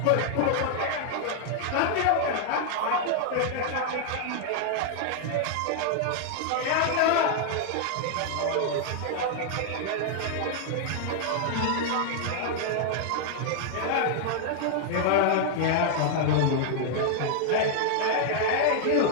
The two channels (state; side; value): different; both; correlation 0.00